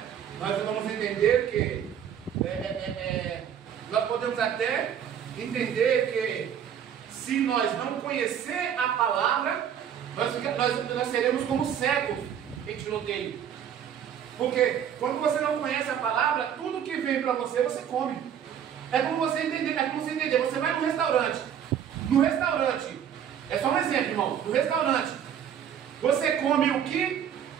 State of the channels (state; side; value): quieter; left; 9.0 dB